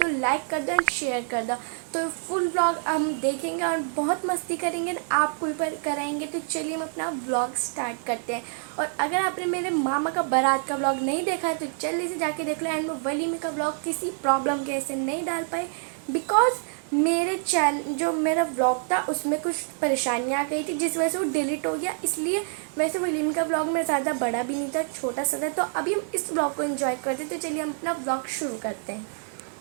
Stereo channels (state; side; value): silent; left; 60 dB below the other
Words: लाइक कर दो एंड शेयर कर दो। तो फुल व्लॉग हम देखेंगे और बहुत मस्ती करेंगे, आपको भी कराएंगे। तो चलिए हम अपना व्लॉग स्टार्ट करते हैं। और अगर आपने मेरे मामा का बारात का व्लॉग नहीं देखा है तो जल्दी से जाके देख लो। एंड मैं वलीमे का व्लॉग किसी प्रॉब्लम के ऐसे नहीं डाल पाई, बिकॉज मेरे चैनल जो मेरा व्लॉग था उसमें कुछ परेशानियाँ आ गई थी, जिस वजह से वो डिलीट हो गया। इसलिए वैसे वलीमे का व्लॉग मेरा ज़्यादा बड़ा भी नहीं था, छोटा सा था। तो अभी हम इस व्लॉग को एंजॉय करते हैं। तो चलिए हम अपना व्लॉग शुरू करते हैं।